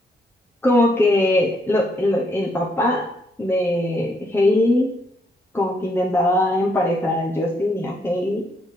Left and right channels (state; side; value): normal; both; correlation 0.73